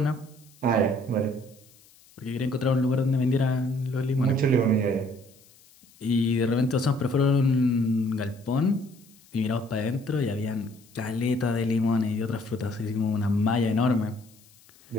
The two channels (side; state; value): left; noise; hiss, 28 dB below the sound